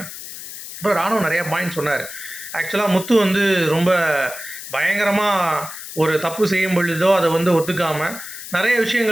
அப்புறம் ராணுவ நிறையா பாயிண்ட் சொன்னார். ஆக்சுவலாக முத்து வந்து ரொம்ப பயங்கரமாக ஒரு தப்பு செய்யும் பொழுதோ அதை வந்து ஒத்துக்காமல் நிறைய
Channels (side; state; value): left; noise; hiss, 11 dB below the sound